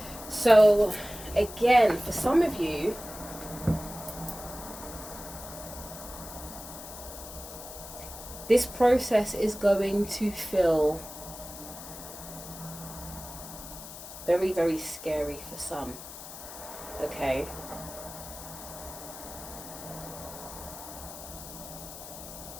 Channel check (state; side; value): noise; left; hiss, 13 dB below the sound